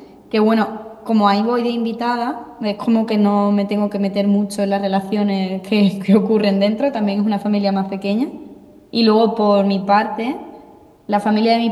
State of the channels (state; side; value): identical; both; correlation 1.00